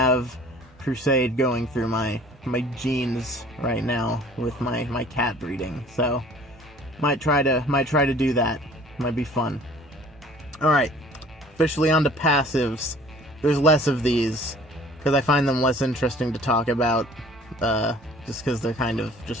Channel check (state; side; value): normal; both; correlation 0.51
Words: Crusade going through my genes right now with my cat breeding. So, might try to do that. Might be fun. Alright. Officially on to passives. There's less of these, because I find them less interesting to talk about. Just because they're kind of